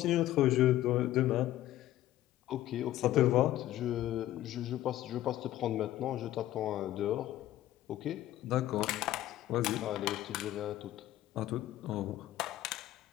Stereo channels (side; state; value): right; quieter; 14.2 dB